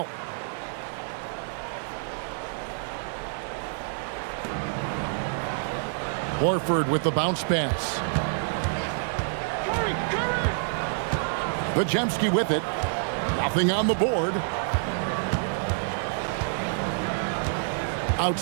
Horford with the bounce pass. Podziemski with it. Nothing on the board.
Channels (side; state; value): left; silent; digital silence